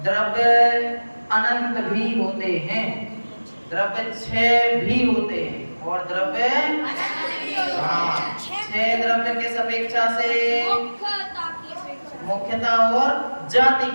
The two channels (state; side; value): inverted; both; correlation -1.00